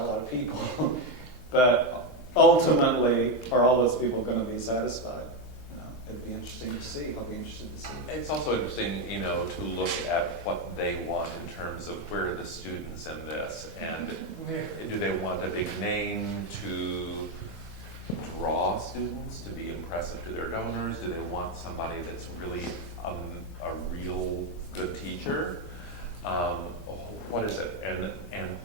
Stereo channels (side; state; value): both; normal; correlation 0.08